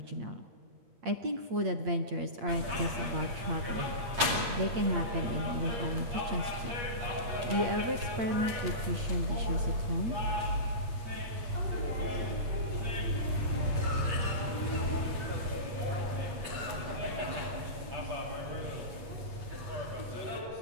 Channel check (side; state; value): left; late; 8.5 ms